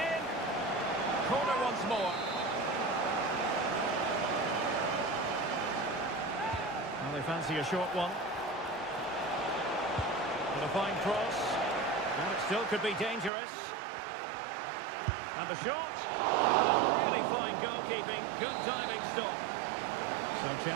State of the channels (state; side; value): drops out; left; at 13.3 s